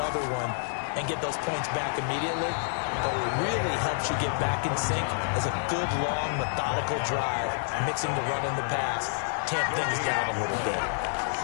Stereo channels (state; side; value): silent; right; digital silence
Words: one and get those points back immediately. But what really helps you get back in sync is a good, long, methodical drive, mixing the run and the pass, tamp things down a little bit.